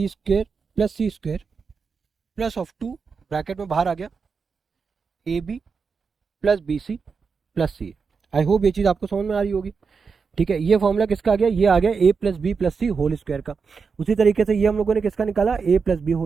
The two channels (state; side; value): quieter; left; 5.3 dB